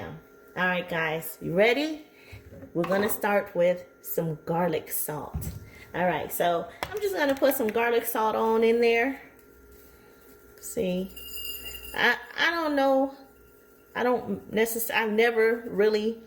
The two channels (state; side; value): identical; both; correlation 1.00